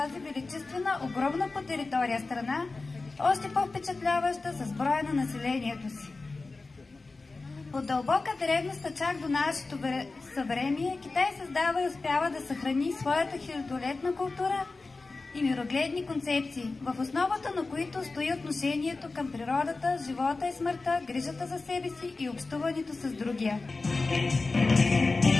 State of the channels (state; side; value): quieter; right; 3.6 dB